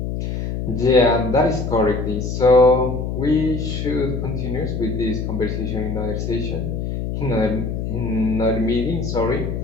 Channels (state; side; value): noise; left; hum, 3 dB below the sound